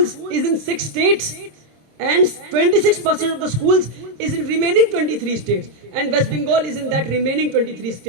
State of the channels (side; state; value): left; late; 27 ms